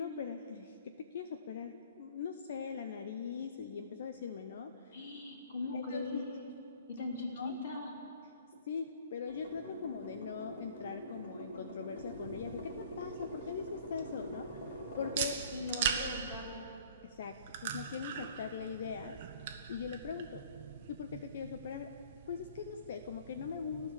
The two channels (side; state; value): both; inverted; correlation -0.52